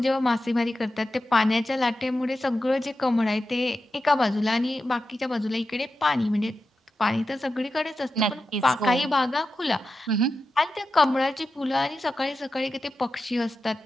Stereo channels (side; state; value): both; normal; correlation 0.91